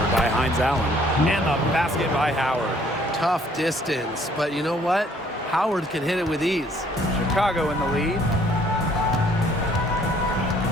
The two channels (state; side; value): normal; both; correlation 0.61